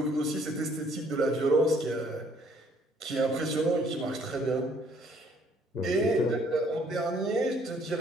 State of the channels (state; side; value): normal; both; correlation 0.62